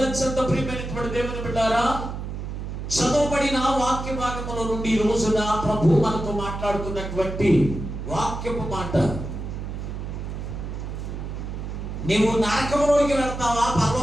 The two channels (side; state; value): right; noise; hum, 6 dB below the sound